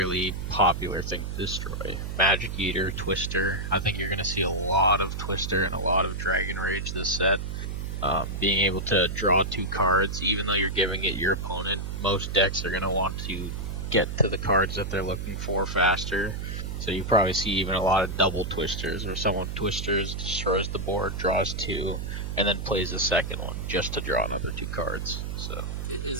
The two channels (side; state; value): right; noise; hum, 5 dB below the sound